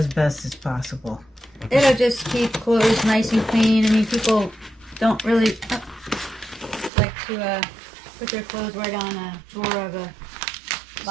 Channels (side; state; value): left; drops out; at 6.9 s